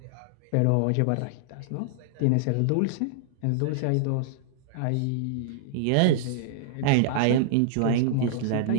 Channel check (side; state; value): both; different; correlation -0.01